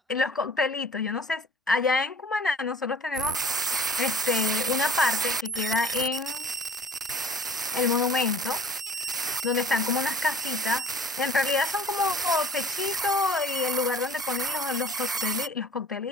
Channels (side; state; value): both; normal; correlation 0.48